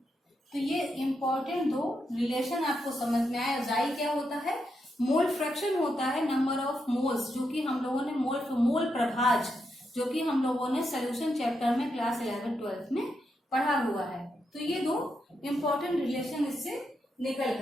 तो ये इंपॉर्टेंट दो रिलेशन आपको समझ में आया। Xi क्या होता है? मोल फ्रैक्शन होता है नंबर ऑफ मोल्स, जो कि हम लोगों ने मोल प्रभाज, जो कि हम लोगों ने सोल्यूशन चैप्टर में क्लास 11-12 में पढ़ा हुआ है। तो ये दो इंपॉर्टेंट रिलेशन इससे निकल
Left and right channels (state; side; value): normal; both; correlation 0.83